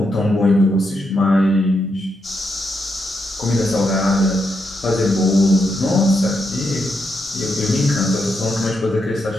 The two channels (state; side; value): normal; both; correlation 0.82